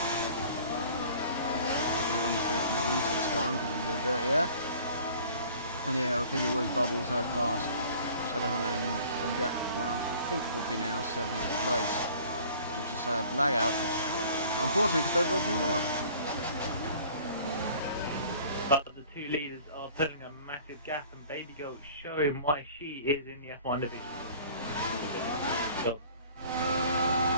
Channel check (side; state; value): both; inverted; correlation -0.49